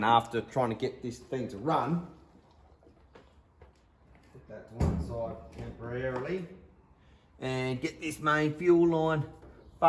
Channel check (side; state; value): both; identical; correlation 1.00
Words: after trying to get this thing to run. Put that to one side temporarily and get this main fuel line